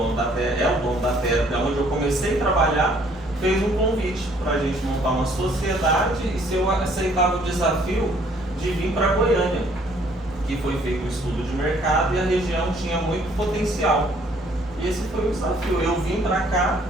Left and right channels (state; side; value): normal; both; correlation 0.62